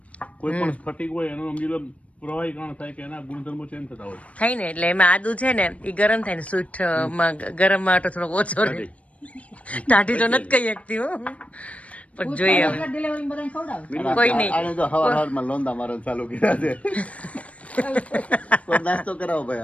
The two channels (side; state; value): right; late; 0.065 ms